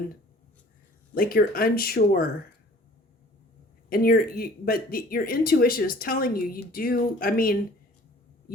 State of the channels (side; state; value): both; normal; correlation 0.50